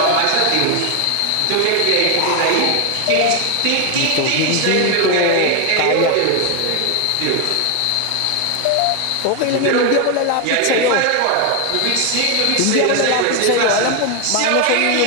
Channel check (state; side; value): different; both; correlation 0.01